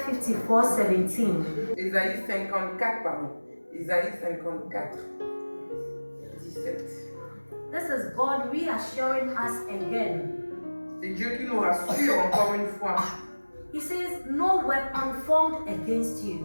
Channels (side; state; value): both; inverted; correlation -1.00